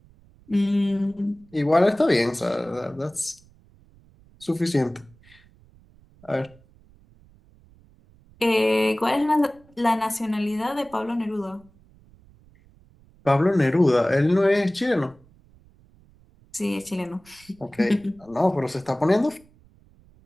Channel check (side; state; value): right; noise; rumble, 28 dB below the sound